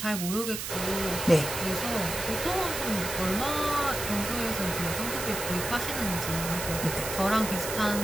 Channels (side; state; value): right; noise; hiss, 5 dB below the sound